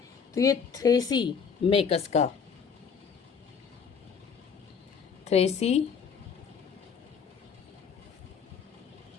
तो ये थ्रेसी मेकस का,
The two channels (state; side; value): quieter; right; 6.3 dB